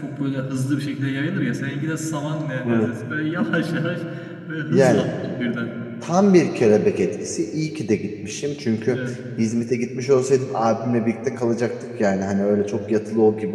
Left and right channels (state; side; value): identical; both; correlation 1.00